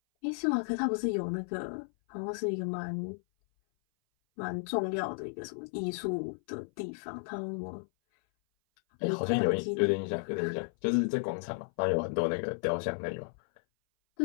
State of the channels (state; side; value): silent; right; 56 dB below the other